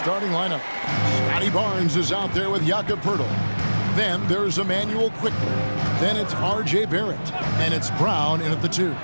lineup. Scotty Barnes is out there with Jakob Poeltl. Then there's Emmanuel Quickley. Then it's R.J. Barrett. And it's Brown in at the 2.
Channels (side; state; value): both; inverted; correlation -1.00